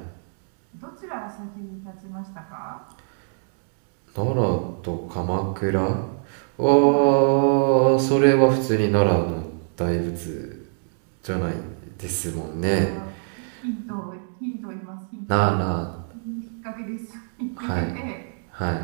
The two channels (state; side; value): silent; left; digital silence